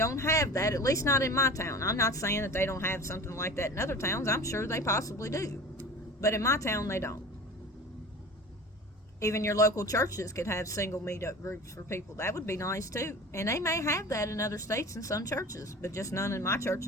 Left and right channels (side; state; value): both; normal; correlation 0.37